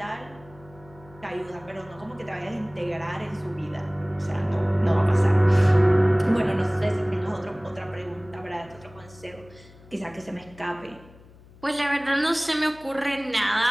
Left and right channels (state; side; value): noise; left; hum, 23 dB below the sound